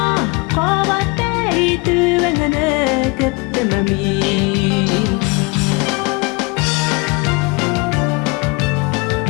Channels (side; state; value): right; quieter; 27.7 dB